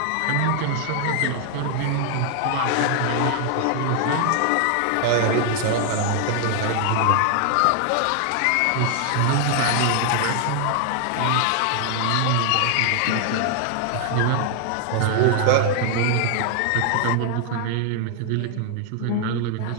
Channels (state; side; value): different; both; correlation 0.00